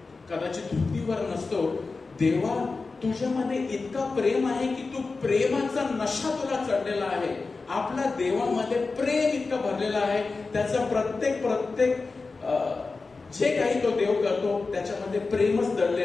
कदाचित धुतीवर नसतो. देवा तुझ्यामध्ये इतका प्रेम आहे की तू प्रेमाचा नशा तुला चढलेला आहे. आपल्या देवामध्ये प्रेम इतकं भरलेलं आहे, त्याचा प्रत्येक जे काही तो देव करतो त्याच्यामध्ये प्रेमच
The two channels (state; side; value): quieter; right; 4.0 dB